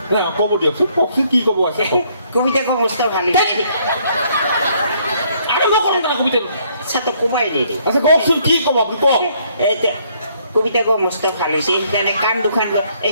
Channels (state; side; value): inverted; both; correlation -0.67